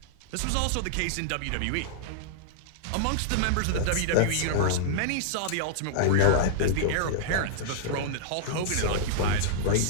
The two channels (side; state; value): both; different; correlation -0.02